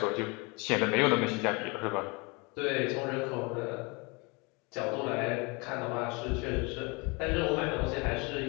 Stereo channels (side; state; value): right; quieter; 28.7 dB